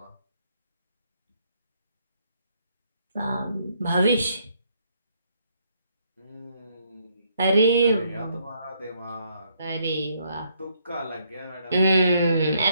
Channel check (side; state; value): both; inverted; correlation -0.71